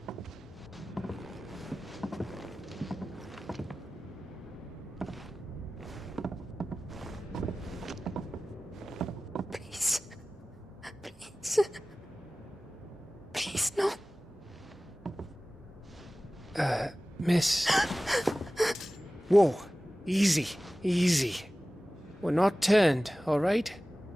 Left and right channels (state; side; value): normal; both; correlation 0.96